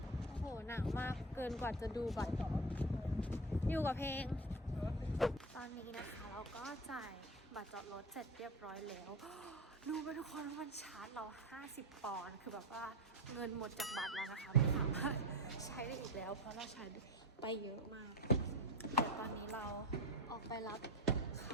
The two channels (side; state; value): both; normal; correlation 0.26